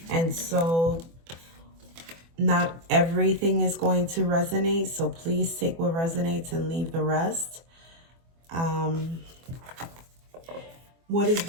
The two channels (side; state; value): left; late; 24 ms